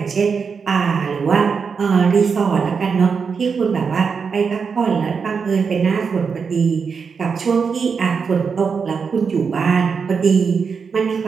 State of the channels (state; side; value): quieter; left; 5.7 dB